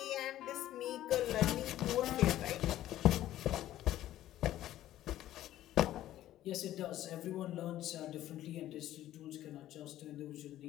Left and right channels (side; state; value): right; quieter; 13.5 dB